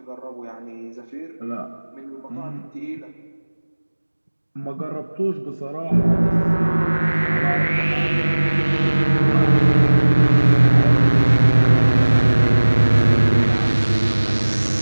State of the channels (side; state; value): both; inverted; correlation -1.00